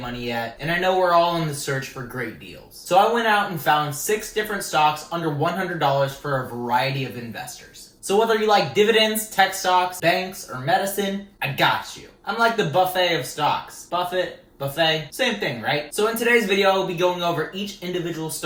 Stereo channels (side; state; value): both; identical; correlation 1.00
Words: yet, and I know we're all in the search for great deals. So I went out and found 6 different stocks under $100 for a variety of investors. So whether you like dividends, tech stocks, banks, or medicine, I got you. I'm like the buffet of stocks. Buffet, same thing, right? So in today's video, I'll be going over each individual